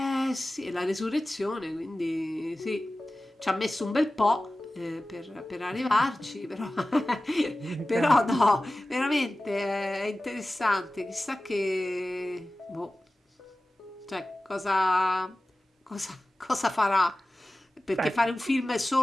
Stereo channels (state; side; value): normal; both; correlation 0.96